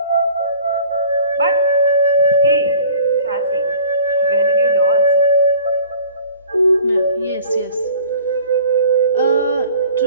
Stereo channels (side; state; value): both; inverted; correlation -0.47